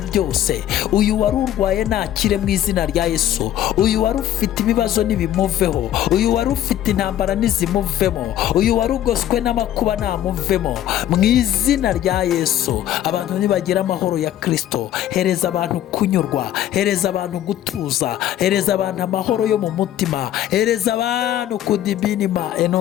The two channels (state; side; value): quieter; right; 12.0 dB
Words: byose. Uyu wari urwaye nakire mu izina rya Yesu. Uyu wari ufite ibibazo nibimuveho. Uyu wari ufite intambara nizimuvemo. Uyu wari ugoswe n'amakuba namuvemo mu izina rya Yesu. Abantu nibagira amahoro ya Kristo. Hereza abantu kunyurwa, hereza abantu gutuza, hereza abantu amahoro yo mu mutima, hereza abantu kudibinima